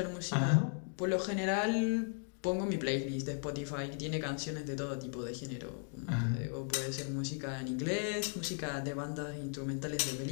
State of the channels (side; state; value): right; silent; 53 dB below the other